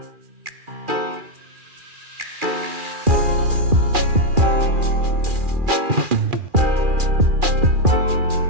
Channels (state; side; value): late; left; 2.4 ms